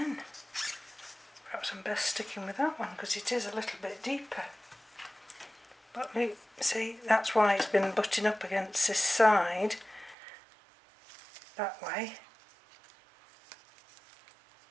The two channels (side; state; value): left; drops out; at 10.2 s